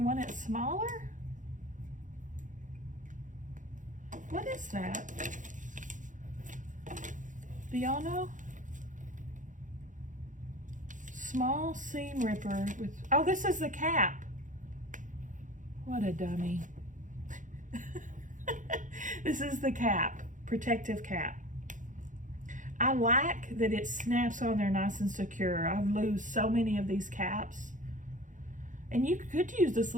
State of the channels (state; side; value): late; left; 0.37 ms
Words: want it smaller? What is that? Do y'all know? Small seam ripper with, oh, this is the cap. What a dummy. This is the cap, protective cap. I like that it snaps on there nice and secure. I've lost so many of these caps. And you could use this